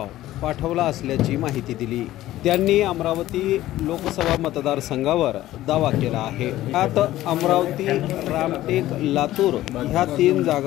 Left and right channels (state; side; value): quieter; right; 14.9 dB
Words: पाठवला असल्याची माहिती दिली। त्यांनी अमरावती लोकसभा मतदारसंघावर दावा केला आहे। यात अमरावती, रामटेक, लातूर ह्या 3